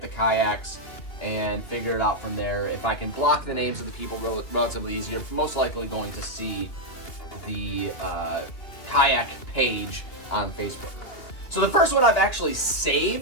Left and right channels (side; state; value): right; late; 2.7 ms